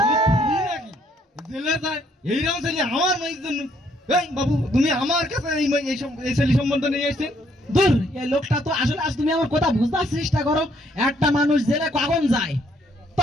জেলে যায় এইরকম ছেলে আমার মেয়ের জন্য? এই বাবু তুমি আমার কাছে এই ছেলে সম্বন্ধ নিয়ে এসেছেন? দূর, এই লোকটা তো আসলে, আজ তুমি আমার কথা বুঝবার চেষ্টা করো। একটা মানুষ জেলে কখন যায়?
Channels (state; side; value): normal; both; correlation 0.68